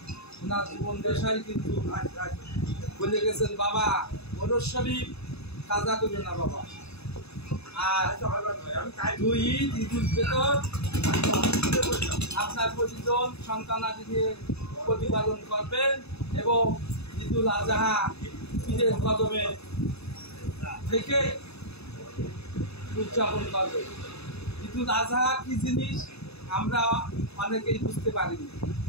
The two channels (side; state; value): right; late; 0.79 ms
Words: ওনার জীবন দেশাই কিন্তু বলে গেছেন, বাবা ওরস শরীফ কাজা করবে না বাবা, আর দুই ঈদ ঈদুল ফিতর আপনার প্রতিজন সন্তানাদি নিয়ে প্রতিপালন করবেন এবং ঈদুল আজহা ঈদের কদমে থেকে উদযাপন করবেন। ঈদুল আজহা কি জিনিস আমরা অনেকেই বুঝতে পারিনি,